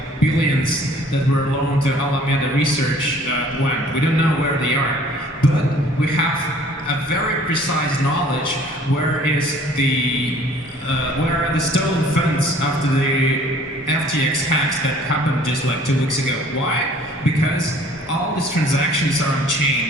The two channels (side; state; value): both; normal; correlation 0.54